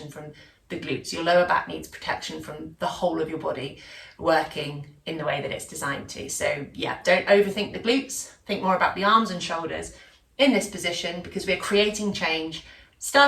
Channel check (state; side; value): identical; both; correlation 1.00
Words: from the glutes. Your lower back needs protection from the whole of your body working in the way that it's designed to. So yeah, don't overthink the glutes. Think more about the arms and shoulders in this position, because we're creating change,